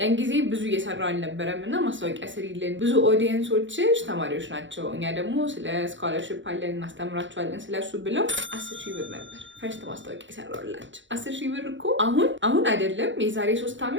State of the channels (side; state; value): left; late; 0.55 ms